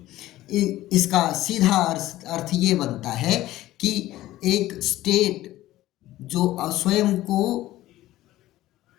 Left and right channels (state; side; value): quieter; right; 15.6 dB